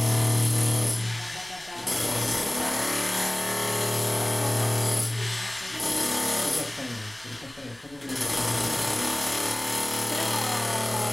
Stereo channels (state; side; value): noise; left; rumble, 28 dB below the sound